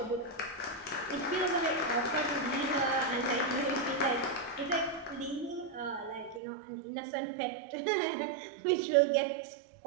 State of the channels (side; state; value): left; drops out; at 6.4 s